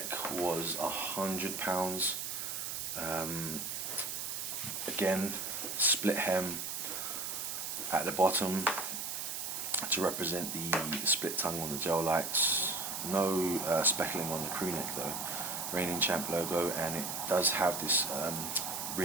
was £100. Again, split hem at the bottom to represent the split tongue on the Gel Lytes. No speckling on the crew neck though. Reigning Champ logo, and it does have this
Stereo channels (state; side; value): noise; right; hiss, 4 dB below the sound